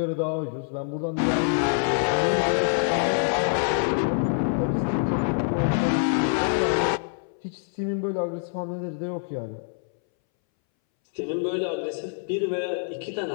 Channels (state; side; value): silent; right; 61 dB below the other